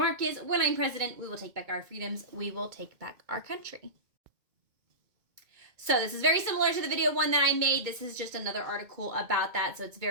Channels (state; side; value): late; left; 2.2 ms